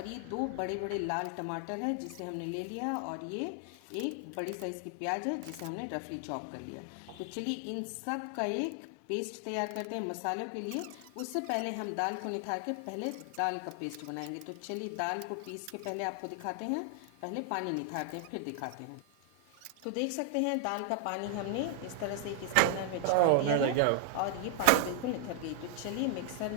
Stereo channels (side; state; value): both; different; correlation 0.00